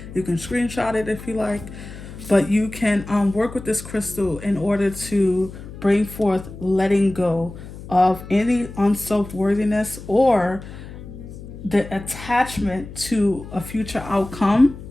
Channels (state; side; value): noise; left; hum, 14 dB below the sound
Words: You can screenshot it if you like, but you can work with this crystal in order to bring forth letting go of any unself-worthiness or the attachment to a future outcome,